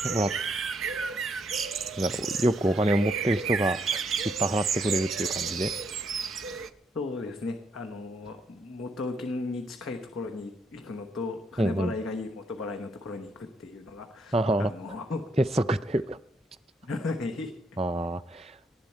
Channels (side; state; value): both; normal; correlation 0.74